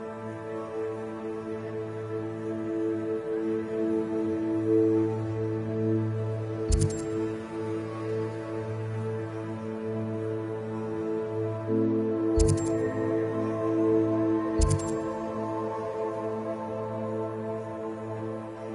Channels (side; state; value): both; identical; correlation 1.00